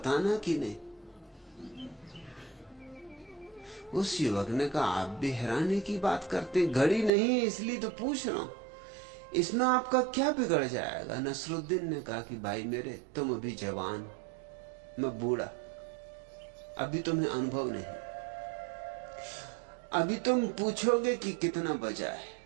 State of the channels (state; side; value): drops out; left; at 7.1 s